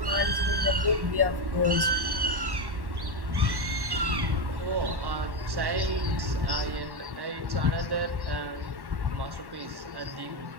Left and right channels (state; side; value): late; left; 1.1 ms